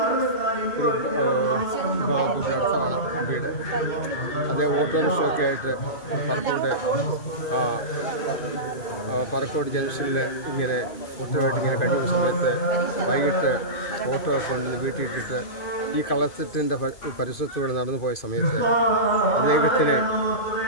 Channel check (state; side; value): late; right; 2.5 ms